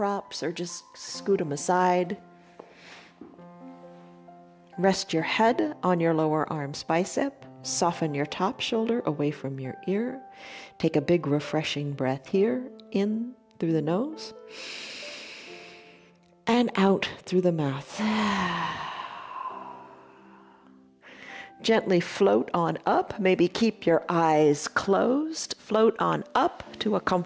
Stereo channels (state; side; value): identical; both; correlation 1.00